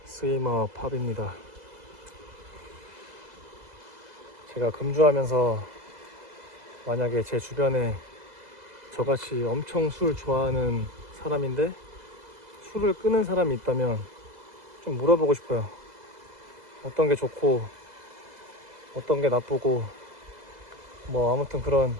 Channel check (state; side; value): late; left; 2.0 ms